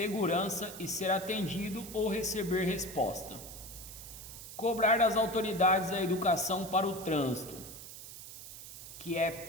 e ser atendido ou receber resposta. Cobrar das autoridades a educação para o trânsito, que é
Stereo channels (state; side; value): noise; right; hiss, 13 dB below the sound